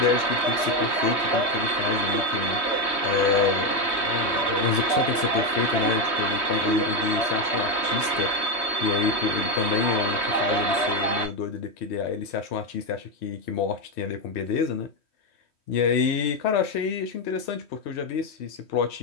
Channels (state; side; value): late; right; 3.1 ms